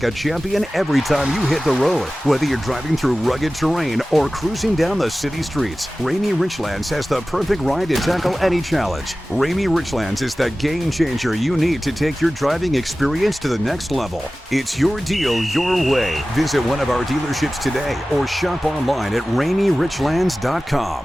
a champion every time you hit the road. Whether you're driving through rugged terrain or cruising down the city streets, Rainy Richlands has the perfect ride to tackle any challenge. Rainy Richlands is the game changer you need to take your driving experience to the next level. It's your deal, your way. Visit one of our dealerships today or shop online at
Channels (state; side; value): normal; both; correlation 0.96